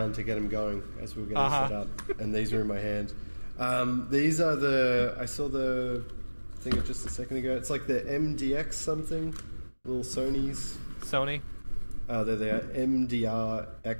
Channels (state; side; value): inverted; both; correlation -1.00